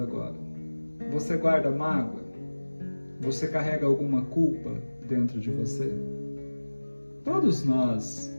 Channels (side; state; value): both; inverted; correlation -1.00